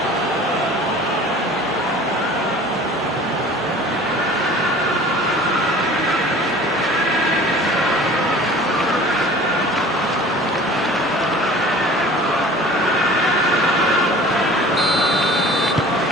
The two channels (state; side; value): normal; both; correlation 0.45